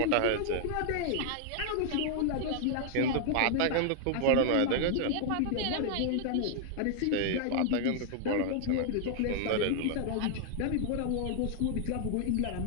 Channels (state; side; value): different; both; correlation 0.00